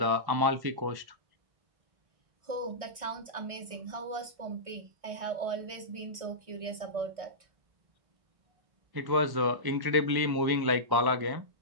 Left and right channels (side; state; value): left; late; 1.6 ms